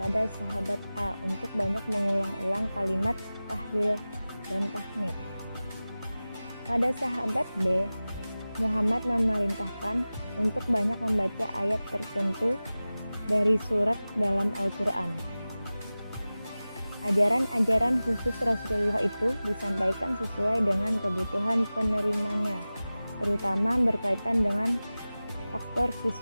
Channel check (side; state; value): both; inverted; correlation -0.97